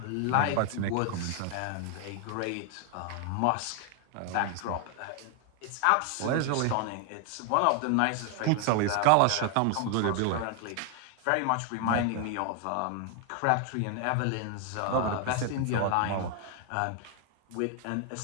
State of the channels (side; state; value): both; different; correlation 0.00